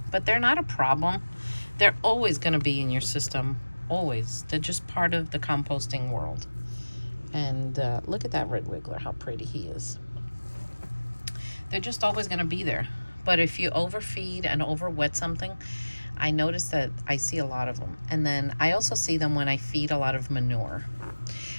But they're not a problem. They're always going to be in your system, always. They're just part of the composting world. And look at that red wiggler, how pretty he is. They're just always going to be there. But if you overfeed and overwet something, I notice that I see a lot of them. And then I also see them when I feed a lot of manure.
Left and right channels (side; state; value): both; inverted; correlation -1.00